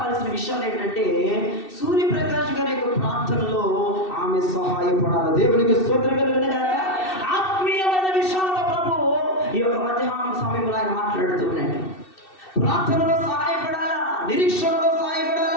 విషయాలు ఏంటంటే సూర్యప్రకాష్ గారి యొక్క ప్రార్థనలో ఆమె సహాయపడాలి. దేవునికి స్తోత్రం కలుగునుగాక. ఆత్మీయమైన విషయాలతో ప్రభు ఈ యొక్క మధ్యాహ్నం సమయంలో ఆయన మాట్లాడుతున్నాడు. ప్రార్థనలో సహాయపడాలా, నిరీక్షణలో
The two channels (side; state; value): right; late; 2.7 ms